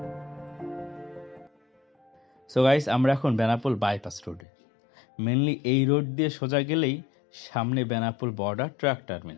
সো গাইস, আমরা এখন বেনাপোল বাইপাস রোডে। মেনলি এই রোড দিয়ে সোজা গেলেই সামনে Benapole border truck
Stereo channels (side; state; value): right; drops out; at 4.5 s